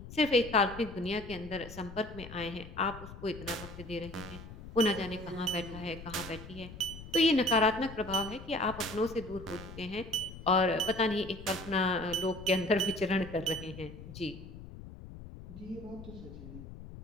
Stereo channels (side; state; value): left; noise; rumble, 14 dB below the sound